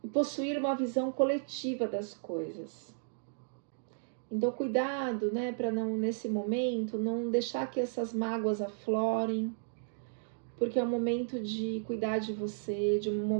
E possuir uma visão coletiva das coisas. Então, cuidado, né, para não, nesse momento, não deixar que essas mágoas aflorem, porque é um momento de cuidar de você, de um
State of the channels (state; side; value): silent; left; digital silence